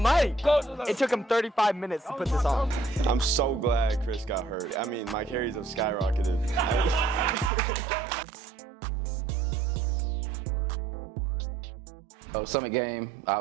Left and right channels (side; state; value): left; drops out; at 7.5 s